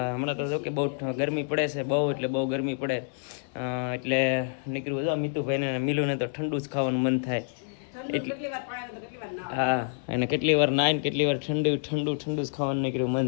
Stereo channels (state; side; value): silent; right; 59 dB below the other